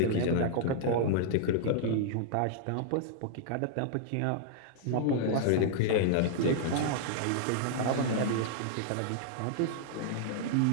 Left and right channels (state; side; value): different; both; correlation -0.01